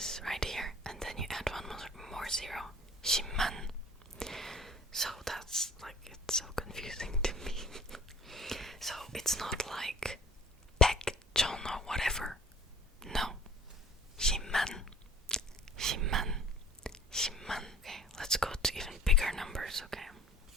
right here and then you add one more zero. 10만. So that's like, it's so confusing to me. So it's not like 백천 or whatever. No. 10만. Okay, let's go to even bigger numbers, okay?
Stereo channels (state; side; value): normal; both; correlation 0.46